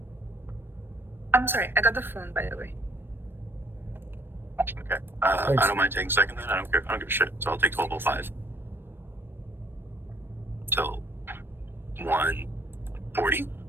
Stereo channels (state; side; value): late; left; 0.099 ms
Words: I'm sorry, I got the phone, by the way. Okay. I don't mind taking second then. I don't care. I don't give a shit. So I'll take 12:05 till 1:40.